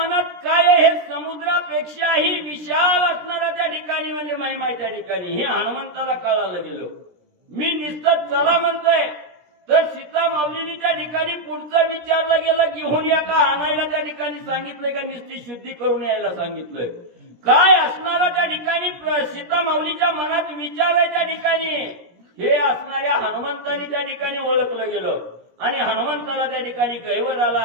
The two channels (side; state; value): left; late; 17 ms